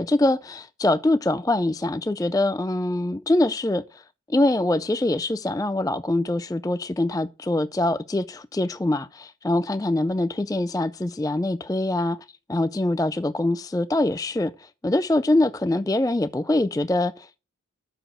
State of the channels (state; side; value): normal; both; correlation 0.85